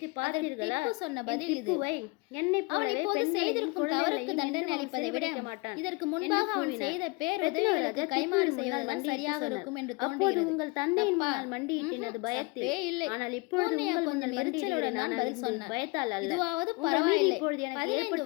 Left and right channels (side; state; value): right; quieter; 26.5 dB